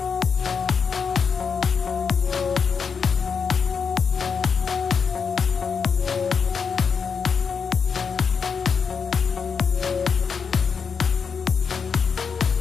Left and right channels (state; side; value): quieter; right; 6.0 dB